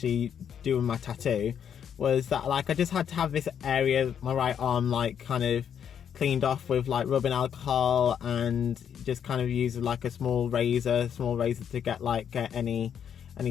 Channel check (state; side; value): quieter; right; 8.4 dB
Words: doing my tattoo was that I just had to have this area, my right arm, kind of cleaned off with rubbing alcohol, and just kind of use a small razor to get